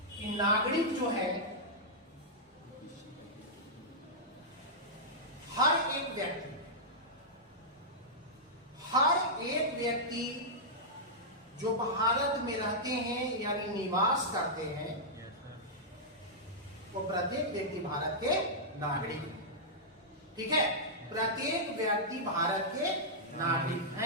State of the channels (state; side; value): normal; both; correlation -0.10